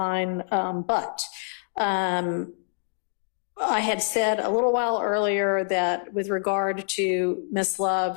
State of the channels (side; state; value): right; silent; digital silence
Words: But I had said a little while earlier that with regard to Ms. Love,